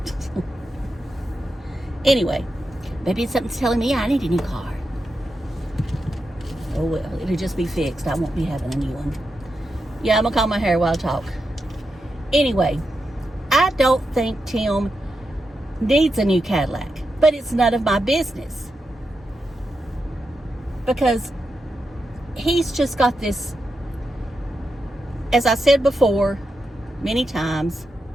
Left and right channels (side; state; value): both; normal; correlation 0.87